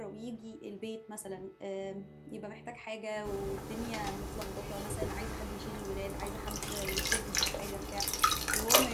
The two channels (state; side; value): identical; both; correlation 1.00